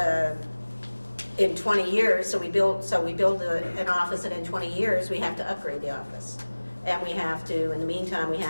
in 20 years, so we build an office, and in 20 years we have to upgrade the office, and we have to, in the meantime, we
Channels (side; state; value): both; inverted; correlation -1.00